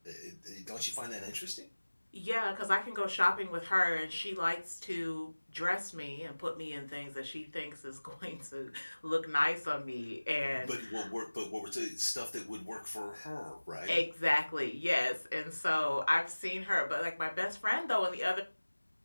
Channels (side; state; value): both; inverted; correlation -1.00